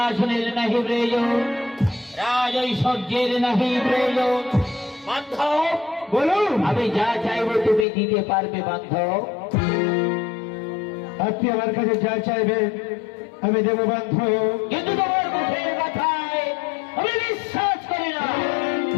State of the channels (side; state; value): right; drops out; at 7.9 s